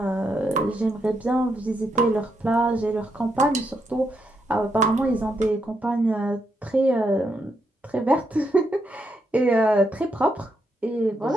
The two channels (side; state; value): both; normal; correlation 0.79